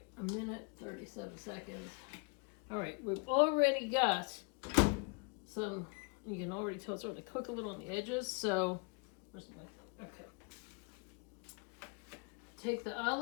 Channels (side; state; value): right; quieter; 34.0 dB